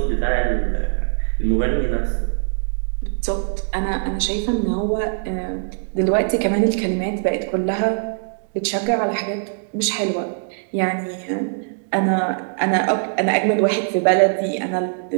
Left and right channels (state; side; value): silent; left; digital silence